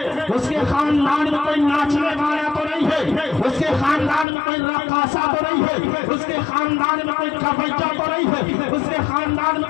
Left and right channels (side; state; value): right; drops out; at 4.2 s